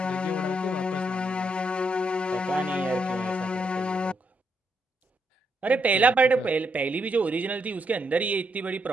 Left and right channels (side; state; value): both; normal; correlation 0.78